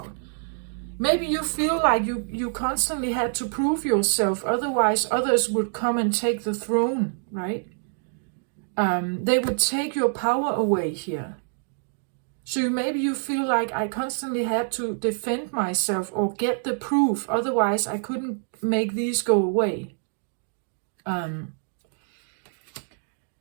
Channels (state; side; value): silent; left; digital silence